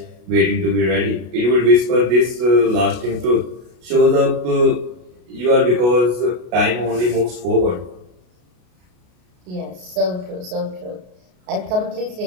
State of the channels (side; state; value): left; late; 33 ms